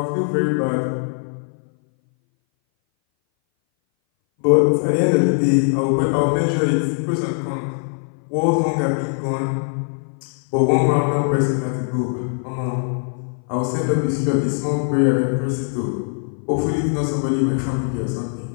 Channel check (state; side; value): silent; right; 60 dB below the other